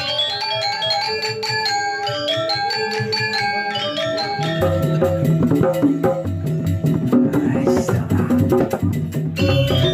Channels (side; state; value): both; identical; correlation 1.00